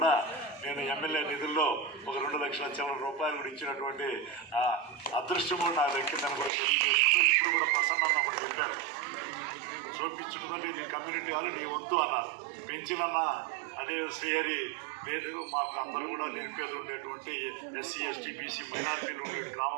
నేను ఎమ్మెల్యే నిధుల్లో ఒక 2 లక్షల చిల్లర రూపాయలు కూడా ఇచ్చినటువంటి అదృష్టం కూడా నా దక్కిందని కూడా తెలియజేసుకుంటూ ఇప్పుడు కూడా ప్రసన్న ఒకటి చెప్పారు, చూపించుకుంటే నీ కమ్యూనిటీ వాళ్ళు నీ వంతు అన్నారు. పెంచినన్న అదే శ్రీహరి లేదు, మాకు అందరూ కూడా నిరుపేదలు ఉండేటువంటి ఎస్సీ, ఎస్టీ, బీసీ మైనారిటీలు ఉండే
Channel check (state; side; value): drops out; left; at 6.5 s